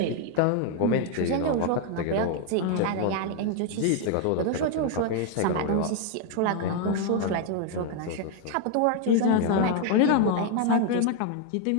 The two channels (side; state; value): both; different; correlation 0.01